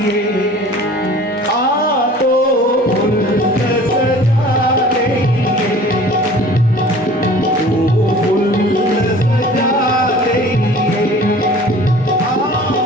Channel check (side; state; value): both; normal; correlation 0.46